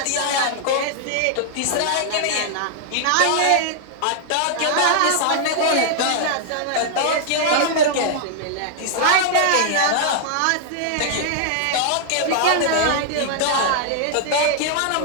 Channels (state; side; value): different; both; correlation -0.01